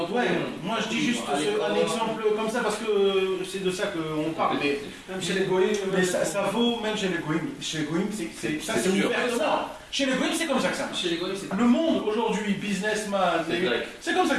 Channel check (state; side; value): identical; both; correlation 1.00